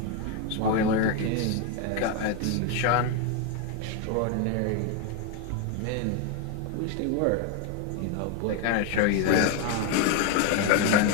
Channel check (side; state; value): both; different; correlation 0.01